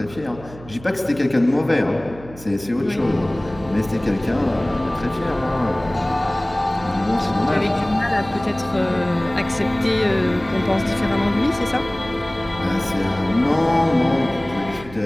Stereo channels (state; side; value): noise; right; hum, 18 dB below the sound